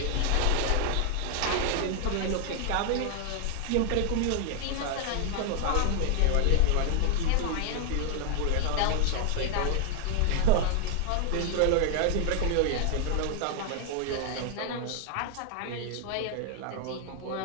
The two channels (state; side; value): different; both; correlation 0.00